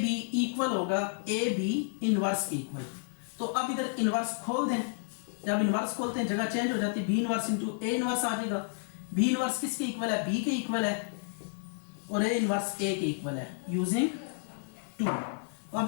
बी इक्वल होगा ए बी इनवर्स के इक्वल। तो अब इधर इनवर्स खोल दें, जब इनवर्स खोलते हैं जगह चेंज हो जाती है, b inverse into a inverse आ जाएगा। बी इनवर्स किसके इक्वल है, बी के इक्वल है, और ए इनवर्स ए के इक्वल है यूजिंग 2। तो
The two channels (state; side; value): silent; right; digital silence